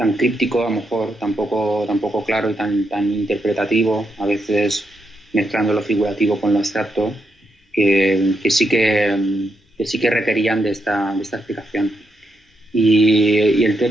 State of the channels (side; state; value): both; normal; correlation 0.82